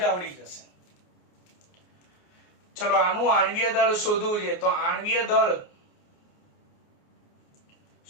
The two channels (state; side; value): late; right; 28 ms